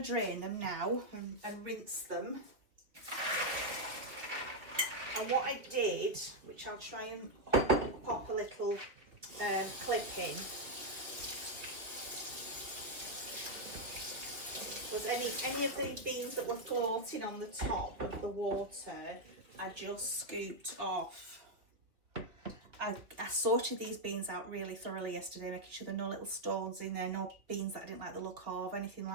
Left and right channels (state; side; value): late; left; 2.5 ms